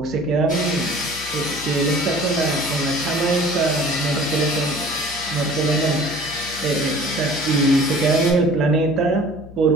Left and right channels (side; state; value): left; noise; hum, 18 dB below the sound